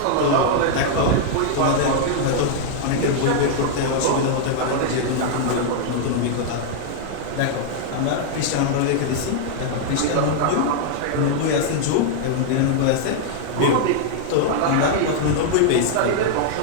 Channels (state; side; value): different; both; correlation -0.01